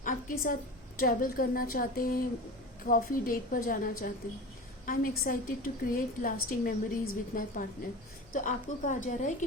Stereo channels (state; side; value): noise; left; hum, 26 dB below the sound